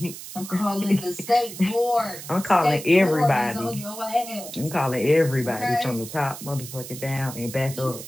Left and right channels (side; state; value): right; noise; hiss, 12 dB below the sound